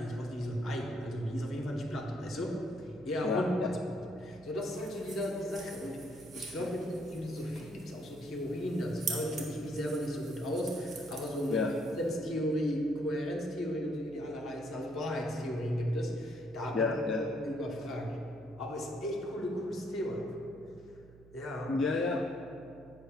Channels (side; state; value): right; noise; hum, 22 dB below the sound